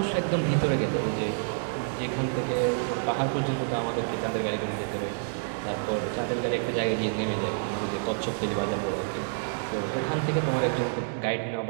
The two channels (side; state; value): left; silent; digital silence